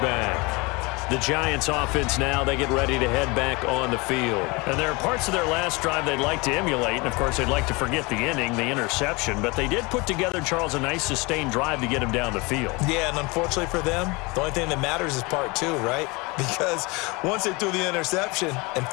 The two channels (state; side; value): quieter; right; 26.1 dB